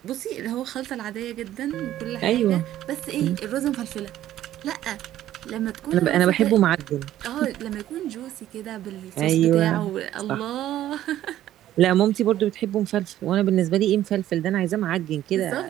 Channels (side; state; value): left; quieter; 12.9 dB